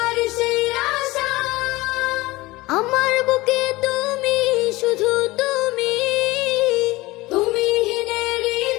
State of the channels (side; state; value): right; quieter; 20.4 dB